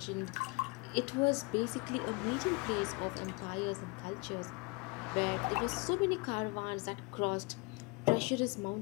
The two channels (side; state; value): right; quieter; 27.2 dB